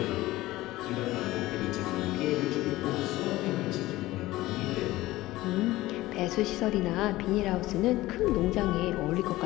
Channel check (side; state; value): right; quieter; 17.6 dB